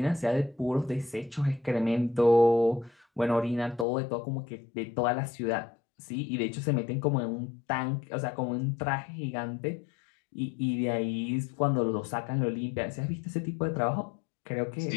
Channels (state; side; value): drops out; right; at 3.9 s